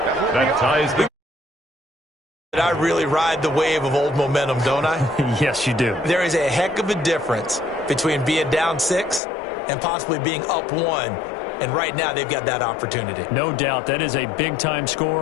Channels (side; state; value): right; drops out; at 9.2 s